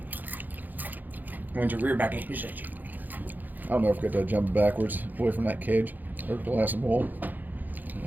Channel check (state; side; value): late; left; 0.085 ms